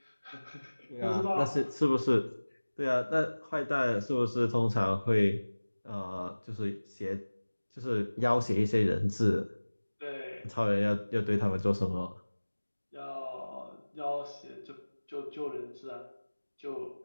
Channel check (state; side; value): inverted; both; correlation -1.00